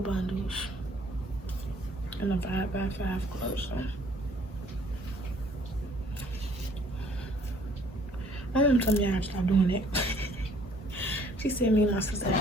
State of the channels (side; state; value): both; normal; correlation 0.59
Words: bundles in a 5x5 closer. My mom told me I had to stop doing it. She said me and my sister